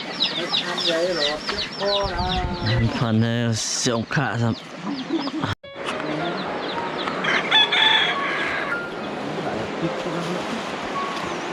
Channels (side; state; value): both; identical; correlation 1.00